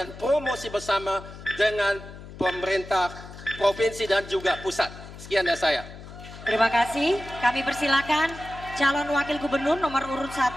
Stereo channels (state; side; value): noise; left; hum, 15 dB below the sound